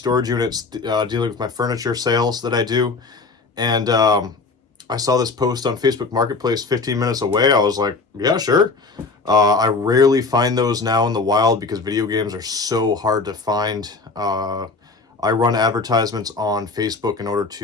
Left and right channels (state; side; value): quieter; right; 4.0 dB